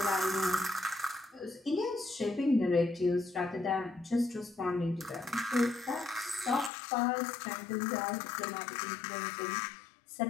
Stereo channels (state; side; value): drops out; right; at 6.7 s